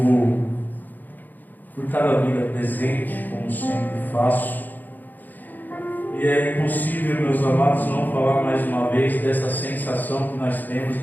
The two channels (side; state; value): right; late; 0.085 ms